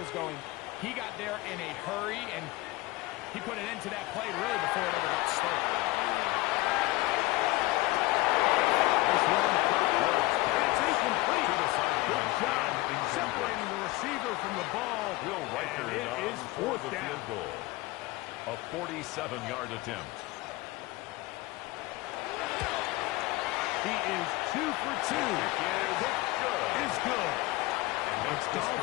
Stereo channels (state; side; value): quieter; right; 20.3 dB